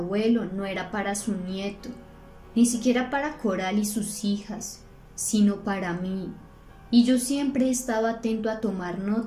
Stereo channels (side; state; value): both; identical; correlation 1.00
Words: no era para su nieto, ni siquiera para Coral y sus hijas, sino para mí, y yo siempre he estado atento a tomar